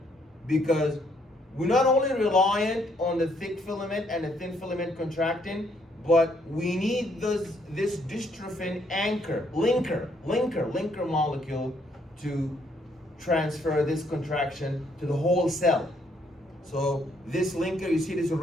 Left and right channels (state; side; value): normal; both; correlation 0.70